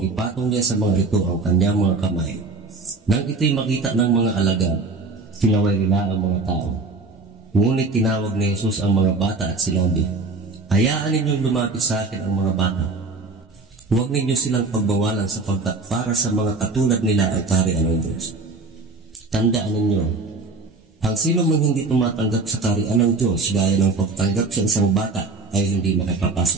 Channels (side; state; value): left; quieter; 3.7 dB